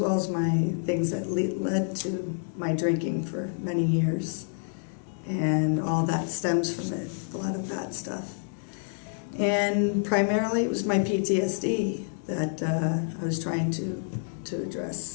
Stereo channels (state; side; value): silent; right; digital silence